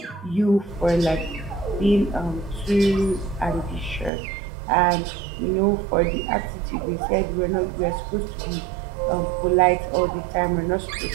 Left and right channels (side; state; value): left; drops out; at 4.1 s